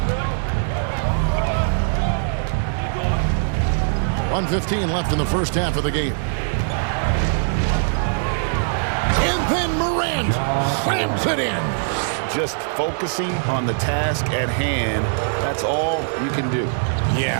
1:15 left in the first half of the game. And then Morant slams it in. Just focusing on the task at hand, that's all you can do.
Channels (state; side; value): silent; left; digital silence